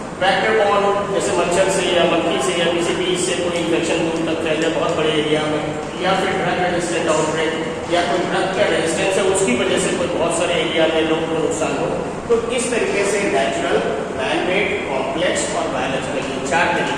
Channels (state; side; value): identical; both; correlation 1.00